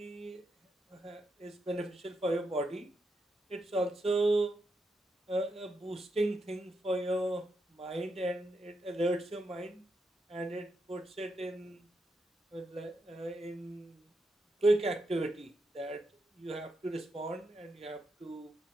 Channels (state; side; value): normal; both; correlation 0.83